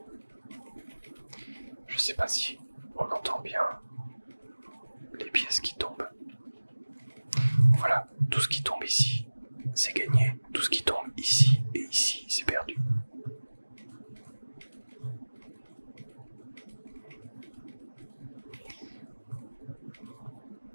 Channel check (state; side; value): inverted; both; correlation -1.00